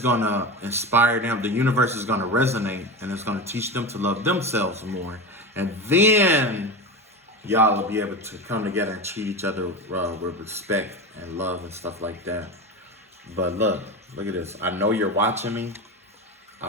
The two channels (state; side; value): normal; both; correlation 0.23